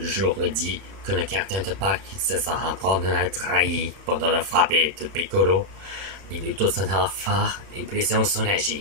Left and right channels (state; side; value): late; left; 31 ms